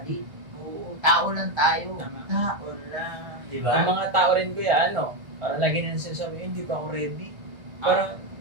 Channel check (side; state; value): left; late; 1.8 ms